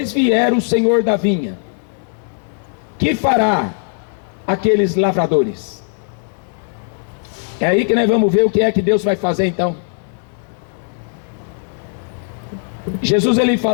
vier o Senhor da vinha, que fará aqueles lavradores? É aí que nós vamos ver o que é que Deus vai fazer então. Jesus ele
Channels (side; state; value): right; silent; digital silence